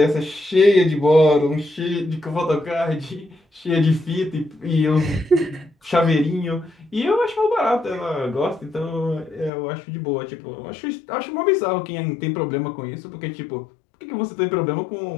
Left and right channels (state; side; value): drops out; right; at 9.5 s